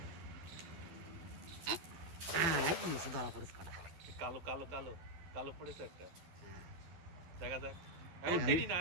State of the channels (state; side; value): late; left; 12 ms